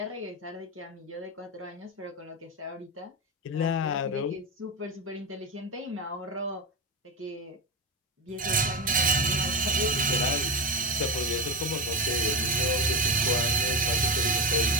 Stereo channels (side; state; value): both; normal; correlation 0.16